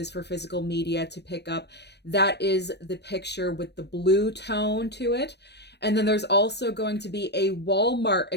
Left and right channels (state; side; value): late; right; 0.49 ms